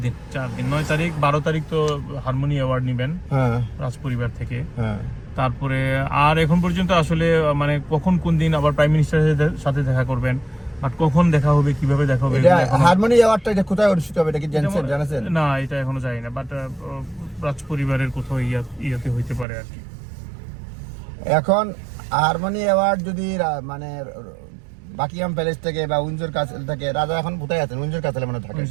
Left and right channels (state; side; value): drops out; left; at 19.5 s